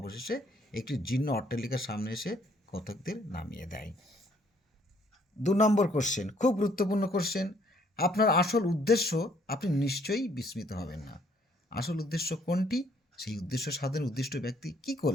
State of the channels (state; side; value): normal; both; correlation 0.65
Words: একটি জীর্ণ অট্টালিকার সামনে এসে কথকদের নামিয়ে দেয়। 2 নম্বর কোশ্চেন, খুব গুরুত্বপূর্ণ কোশ্চেন। আপনার আসল উদ্দেশ্য, আপনি নিশ্চয়ই বিস্মিত হবেন না। আসল উদ্দেশ্য কোনটি? সেই উদ্দেশ্য সাধনের উদ্দিষ্ট ব্যক্তি কি